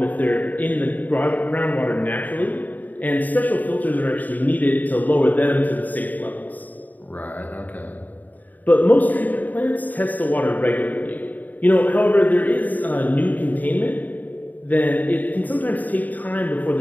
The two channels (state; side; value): late; right; 0.082 ms